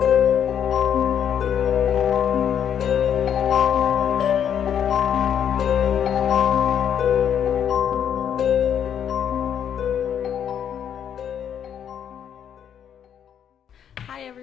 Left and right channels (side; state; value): right; quieter; 8.9 dB